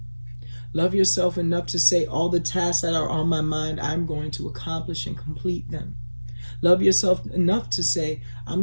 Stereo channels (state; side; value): inverted; both; correlation -1.00